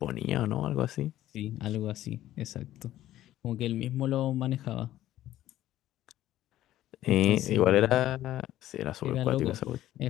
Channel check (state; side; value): quieter; right; 13.7 dB